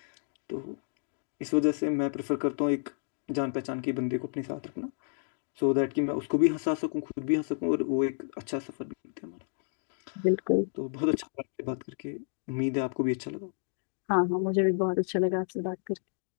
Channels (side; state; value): right; silent; digital silence